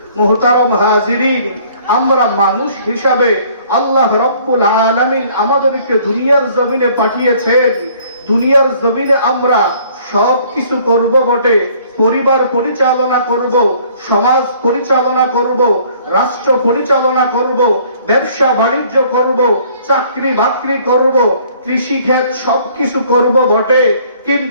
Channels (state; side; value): inverted; both; correlation -0.58